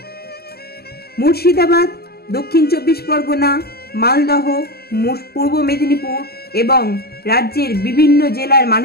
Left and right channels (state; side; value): late; right; 0.46 ms